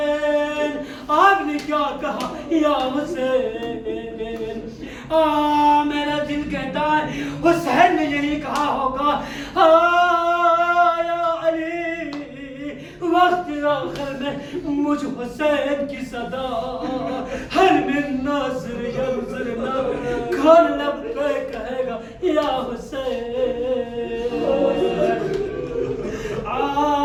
آپ نے کیا کہا یا حسین. میرا دل کہتا ہے حسین نے یہی کہا ہوگا یا علی وقت آخر میں مجھ حسین کی صدا ہر من ناصر ینظرنا کھان لب پہ کہے گا یا حسین.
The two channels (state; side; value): identical; both; correlation 1.00